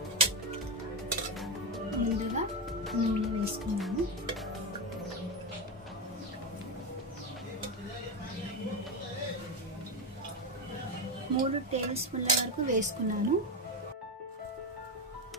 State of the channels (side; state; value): both; normal; correlation 0.12